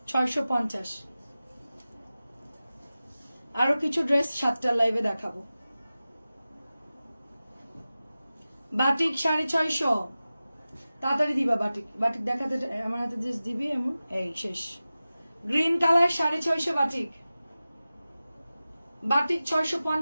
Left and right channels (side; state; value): both; inverted; correlation -0.96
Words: 650। আরো কিছু ড্রেস 7টার লাইভে দেখাবো। বাটিক 650। তাড়াতাড়ি দিবা বাটিক। বাটিক দেখাতে আমার হাতে ড্রেস দিবি এমন। এই শেষ। Green colour 650 batik. বাটিক